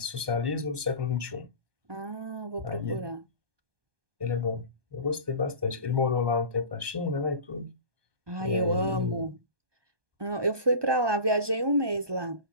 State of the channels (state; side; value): late; left; 1.2 ms